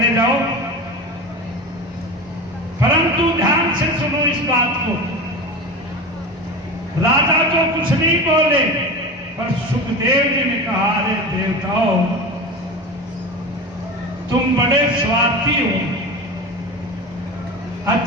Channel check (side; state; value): both; normal; correlation 0.27